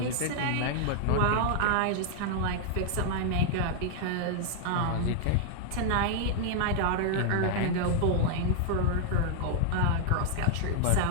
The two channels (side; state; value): both; different; correlation -0.01